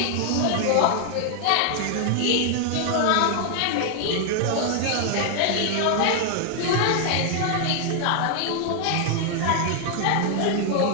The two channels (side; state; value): both; different; correlation 0.00